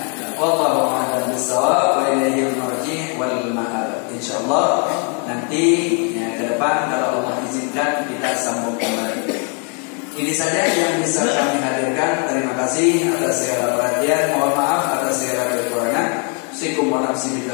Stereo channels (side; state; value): right; quieter; 38.4 dB